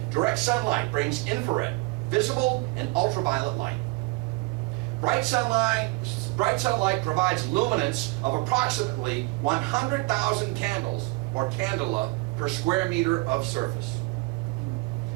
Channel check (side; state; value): left; quieter; 24.0 dB